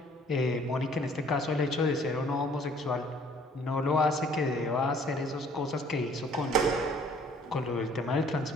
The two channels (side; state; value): both; normal; correlation 0.57